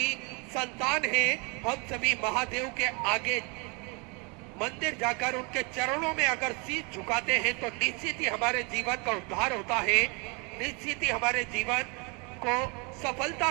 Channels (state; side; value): quieter; left; 31.5 dB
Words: संतान हैं। हम सभी महादेव के आगे मंदिर जाकर उनके चरणों में अगर शीश झुकाते हैं तो निश्चित ही हमारे जीवन का उद्धार होता है, निश्चित ही हमारे जीवन को